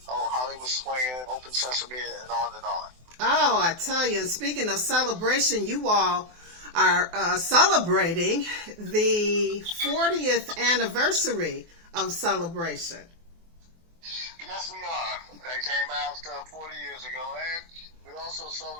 Hollywood Swinging, Open Sesame, and on and on. Oh, I tell you, and speaking of celebration, you all are celebrating the 40th anniversary of Celebration. Yes, we are. That came out 40 years ago, and we also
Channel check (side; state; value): left; late; 24 ms